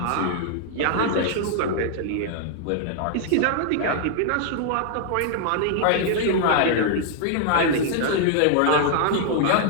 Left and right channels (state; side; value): different; both; correlation -0.01